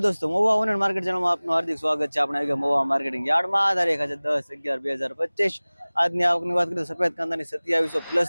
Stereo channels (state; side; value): inverted; both; correlation -1.00